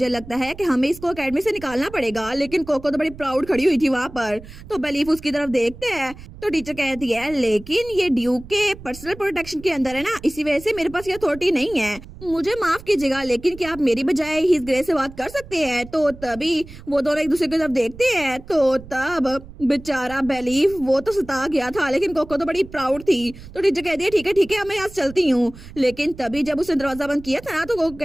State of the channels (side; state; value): right; noise; rumble, 17 dB below the sound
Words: लगता है कि हमें इसको अकेडमी से निकालना पड़ेगा। लेकिन कोको तो बड़ी प्राउड खड़ी हुई थी वहां पर। तो बेलीफ उसकी तरफ देखते हैं तो टीचर कहती है लेकिन ये ड्यूक के पर्सनल प्रोटेक्शन के अंदर है ना, इसी वजह से मेरे पास ये अथॉरिटी नहीं है। मुझे माफ कीजिएगा, लेकिन क्या आप मेरी बजाय हिज ग्रेस से बात कर सकते हैं? तो तभी वो दोनों एक दूसरे की तरफ देखते हैं, तो तब बेचारा बेलीफ वो तो सता गया था, लेकिन कोको तो बड़ी प्राउड थी। तो टीचर कहती है ठीक है मैं यहाँ से चलती हूँ। लेकिन तभी जब उसने दरवाजा बंद किया था ना, तो कोको